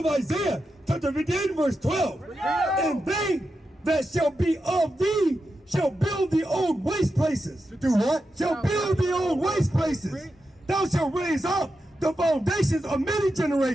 Isaiah, chapter 58, verse 12. And they that shall be of thee shall build the old waste places. Do what? Shall build the old waste places. Thou shalt raise up the foundations of many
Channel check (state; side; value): normal; both; correlation 0.88